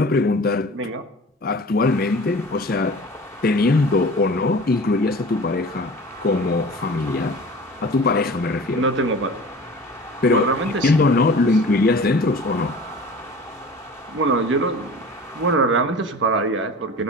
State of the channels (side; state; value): both; normal; correlation 0.40